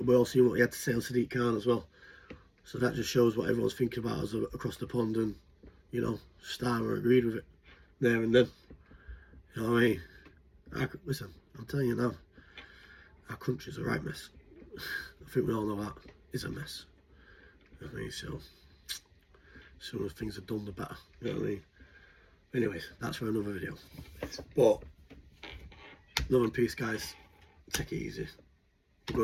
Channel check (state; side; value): identical; both; correlation 1.00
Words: he had to say on Sadiq Khan as well. So that just shows what everyone's thinking about us across the pond, and you know, Starmer agreed with it there and then. You know what I mean? Listen, I'm telling you now, our country's a right mess. I think we all know that. It's a mess. You know what I mean? So, sooner things are done, the better. You know what I mean? Anyways, that's for another video. But, love and peace, guys. Take it easy. I'm